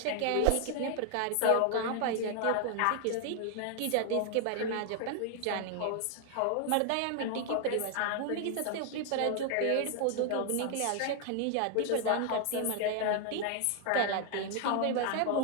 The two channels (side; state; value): both; different; correlation 0.00